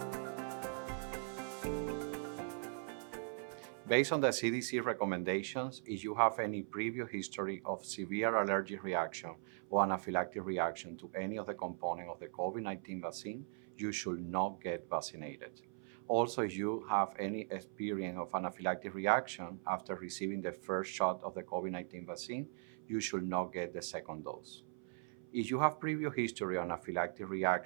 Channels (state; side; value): silent; left; 51 dB below the other